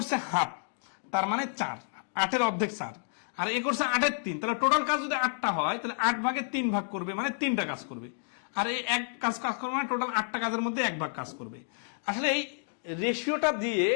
হাফ, তার মানে 4, 8-এর অর্ধেক 4, আর এ করছে 8/3, তাহলে টোটাল কাজ যদি 8টা হয় তাহলে 8 ভাগে 3 ভাগ করবে, মানে 3টা কাজ করবে। আর এই এক কাজ করবে মানে টোটাল 8টা কাজের মধ্যে 1 ভাগ কাজ করবে। আসলে এই রেশিওটা দিয়ে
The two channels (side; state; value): right; silent; digital silence